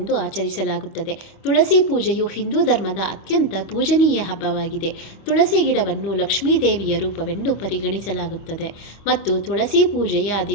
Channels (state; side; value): late; right; 25 ms